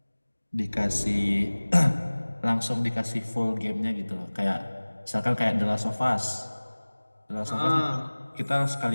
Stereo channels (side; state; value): both; inverted; correlation -1.00